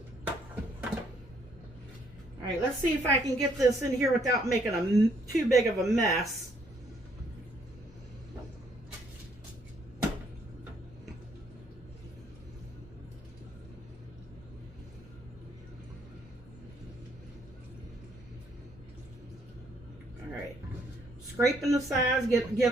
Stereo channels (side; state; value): both; normal; correlation 0.68